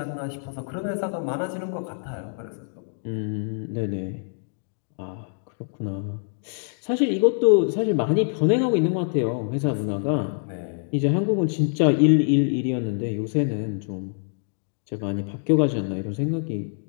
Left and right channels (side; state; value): right; silent; digital silence